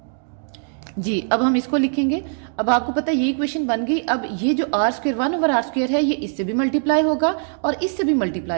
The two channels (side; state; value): left; silent; digital silence